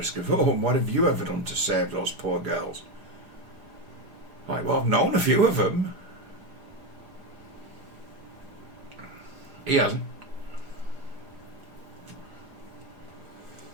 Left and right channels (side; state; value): left; late; 4.9 ms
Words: of, what have you ever done to save those poor girls? Like, well, I've known a few of them. He hasn't.